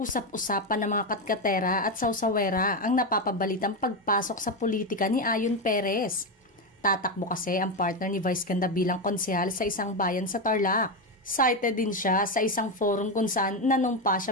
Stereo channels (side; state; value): both; normal; correlation 0.11